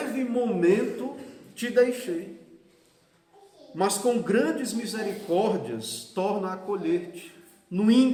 momento te deixei, mas com grandes misericórdias torno a acolher-te. No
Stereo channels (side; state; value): both; identical; correlation 1.00